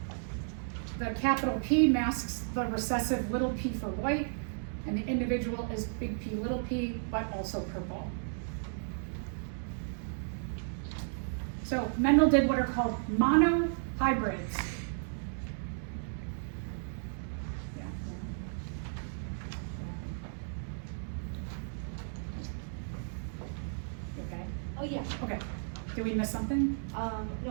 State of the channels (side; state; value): left; silent; digital silence